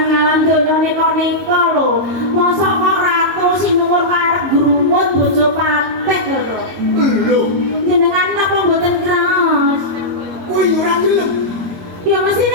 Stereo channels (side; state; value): left; late; 22 ms